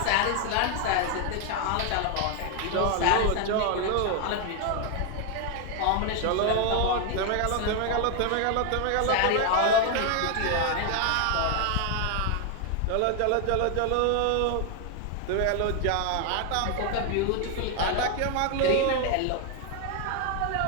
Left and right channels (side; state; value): both; different; correlation 0.01